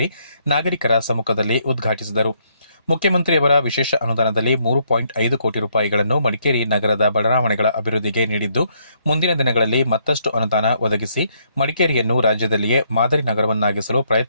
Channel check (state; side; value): inverted; both; correlation -0.71